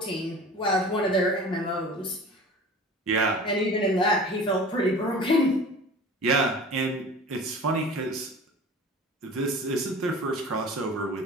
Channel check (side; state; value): both; normal; correlation 0.40